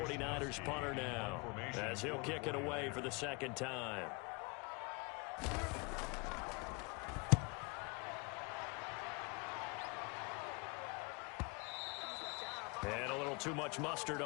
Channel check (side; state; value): right; quieter; 29.8 dB